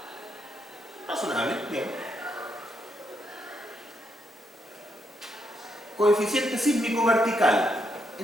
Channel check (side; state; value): both; normal; correlation 0.78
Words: Razonable, bien. Coeficiente sísmico vertical.